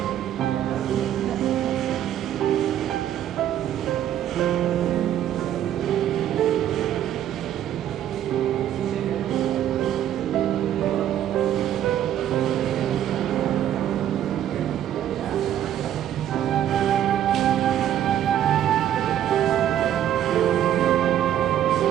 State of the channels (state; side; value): quieter; left; 11.1 dB